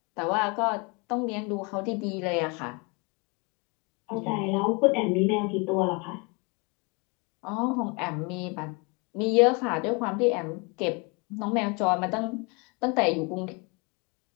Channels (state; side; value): quieter; right; 30.0 dB